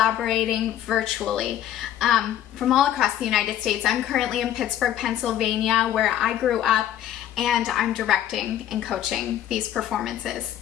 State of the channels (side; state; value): right; quieter; 11.6 dB